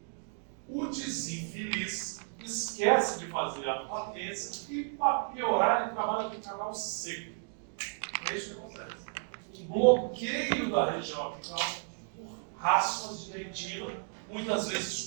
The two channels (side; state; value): left; silent; 56 dB below the other